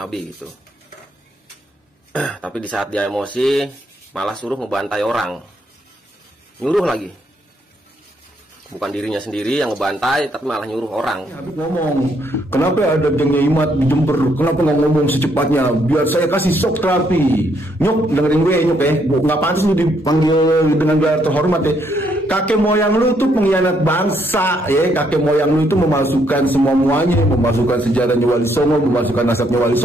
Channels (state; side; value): normal; both; correlation 0.72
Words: gitu. Tapi di saat dia emosi malah suruh ngebantai orang, nyuruh lagi. Bukan dirinya sendiri yang ngebantai, tapi malah nyuruh orang. Habib ngomong, kenapa ada gengnya Imat di Jember? Kenapa nggak ngomong secepatnya? Biar saya kasih shock terapi. Nyok, dengerin gue Nyok ya. Nggak pantas lu dipanggil dengan gelar terhormat ya. Kakek moyang lu tuh pengkhianat bangsa ya. Kakek moyang lu itu memasukkan semuanya, memasukkan sejarahnya Wali Songo, memasukkan nasabnya Wali